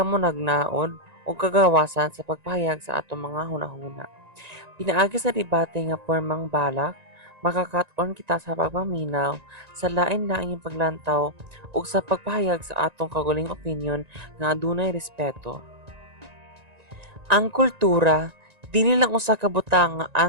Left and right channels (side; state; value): left; late; 1.9 ms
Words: ug kagawasan sa pagpahayag sa atong mga hunahuna. Pinaagi sa debate nga pormang balak, makakat-on kita sa pagpaminaw, sa lain-laing paglantaw ug sa pagpahayag sa atong kaguling opinyon nga adunay respeto. Ang kultura dili lang usa ka butang nga